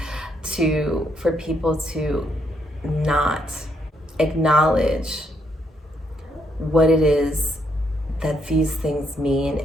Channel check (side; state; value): both; normal; correlation 0.75